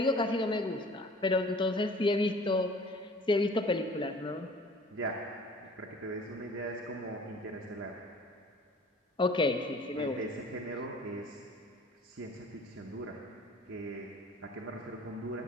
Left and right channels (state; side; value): normal; both; correlation 0.49